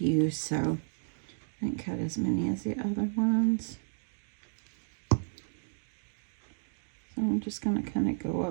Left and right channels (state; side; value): silent; left; 56 dB below the other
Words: so I didn't cut as many as the other ones. So I'm just going to kind of go